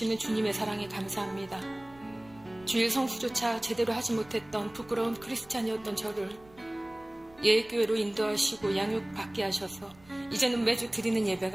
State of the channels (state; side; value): noise; right; rumble, 25 dB below the sound